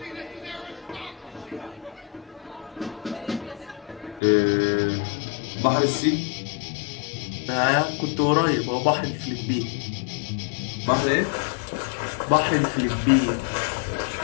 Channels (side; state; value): right; drops out; at 4.2 s